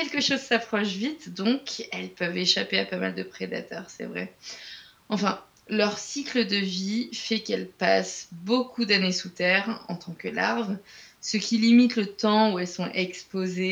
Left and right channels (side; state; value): both; identical; correlation 1.00